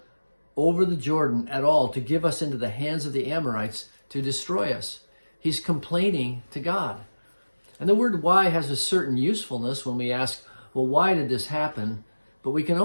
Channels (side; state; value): both; inverted; correlation -1.00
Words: over the Jordan at all to give us into the hands of the Amorites to destroy us? He's complaining to God. And the word why has a certain usefulness when we ask, well, why did this happen? But we can